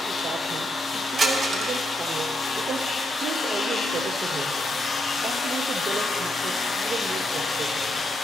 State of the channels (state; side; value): normal; both; correlation 0.80